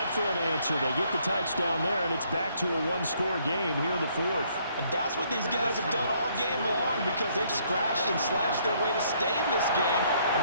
for an answer? They get the touchdown there, and it's back to a one-score game here in the 4th. And that's what these guys have done all game long because they've scratched and slashed their way to stay in this game.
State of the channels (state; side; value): inverted; both; correlation -0.67